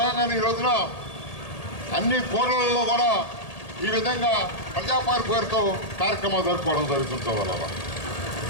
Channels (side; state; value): right; late; 1.8 ms